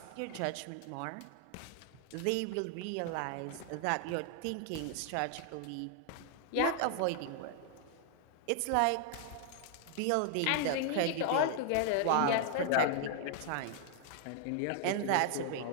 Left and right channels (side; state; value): both; different; correlation 0.00